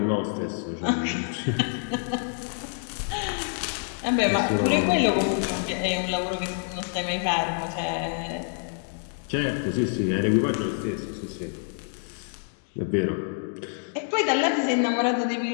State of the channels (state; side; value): silent; right; 60 dB below the other